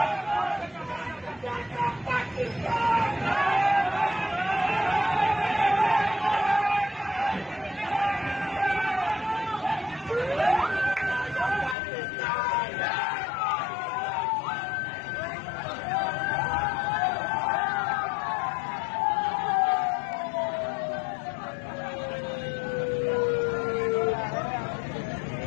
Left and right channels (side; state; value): right; drops out; at 11.8 s